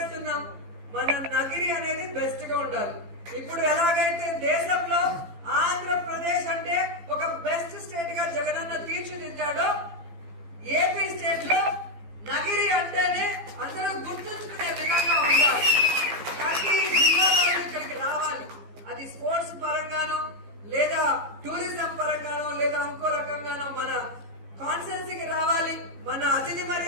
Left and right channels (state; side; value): late; left; 15 ms